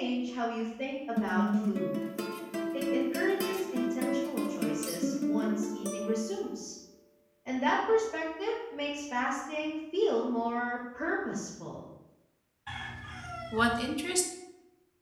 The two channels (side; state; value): both; identical; correlation 1.00